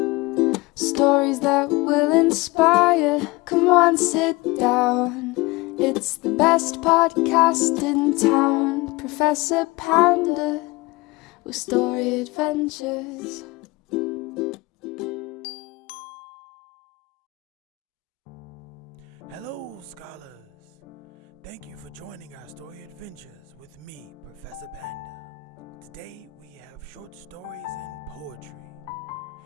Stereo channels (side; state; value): right; quieter; 20.7 dB